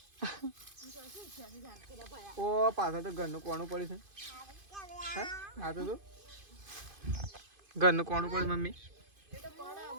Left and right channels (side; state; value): left; late; 2.5 ms